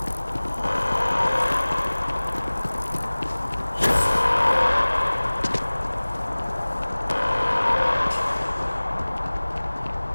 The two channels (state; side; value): inverted; both; correlation -1.00